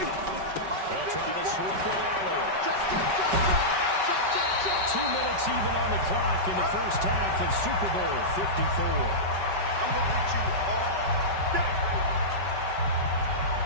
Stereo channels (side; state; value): left; late; 5.2 ms